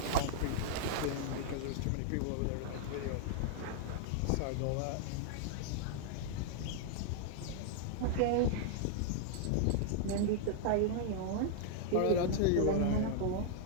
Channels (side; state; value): both; different; correlation -0.01